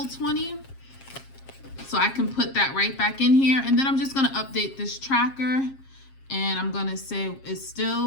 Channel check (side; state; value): right; late; 7.4 ms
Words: 20. So I can put that right back in here. And then I'm just going to update this tracker And I'm gonna say it's